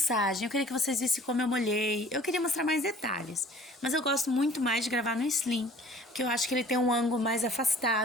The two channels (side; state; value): both; normal; correlation 0.49